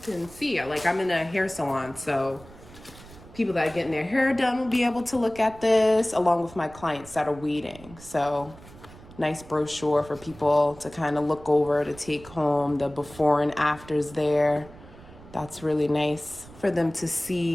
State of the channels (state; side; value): noise; right; rumble, 20 dB below the sound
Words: can see. Like, I'm in a hair salon, so people that are getting their hair done will be able to look at this along with my clients that are waiting. So nice brochure for people to kind of look over, to take home, the before and afters there. That's really nice for them to